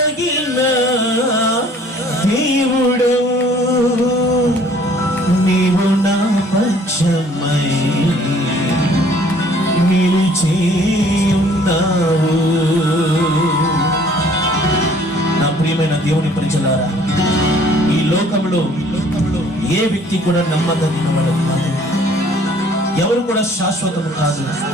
దేవుడవు, నీవు నా పక్షమై నిలిచి ఉన్నావు. నా ప్రియమైన దేవుని పరిచయారా, ఈ లోకంలో ఏ వ్యక్తి కూడా నమ్మదగిన వాడు కాదు. ఎవరు కూడా శాశ్వతము కాదు.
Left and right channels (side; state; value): both; normal; correlation 0.57